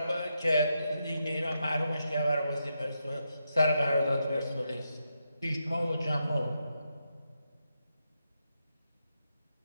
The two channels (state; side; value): inverted; both; correlation -0.84